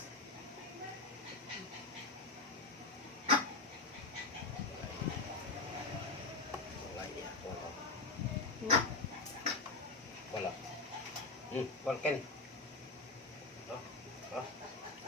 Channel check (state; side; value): quieter; right; 3.4 dB